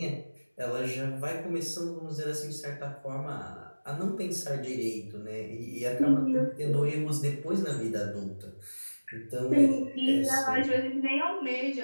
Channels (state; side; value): inverted; both; correlation -1.00